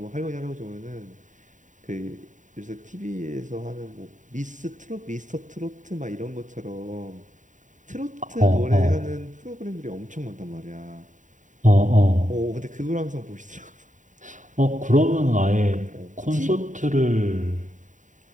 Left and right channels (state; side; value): late; left; 0.36 ms